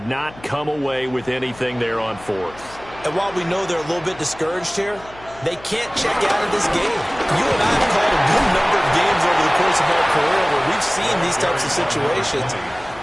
not come away with anything there on 4th. And while we know they're a little bit discouraged here, they can't check out of this game. You and I have called a good number of games over the course of our career where we've seen these types of situations.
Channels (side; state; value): left; noise; hum, 21 dB below the sound